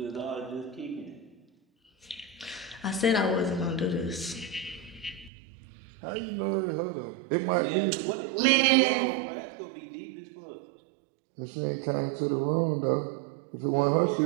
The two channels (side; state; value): left; drops out; at 5.3 s